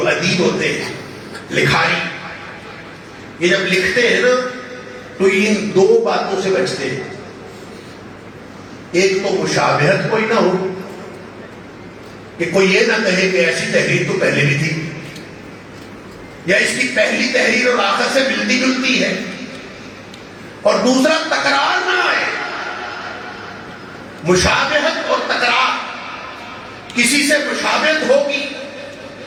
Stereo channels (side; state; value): both; identical; correlation 1.00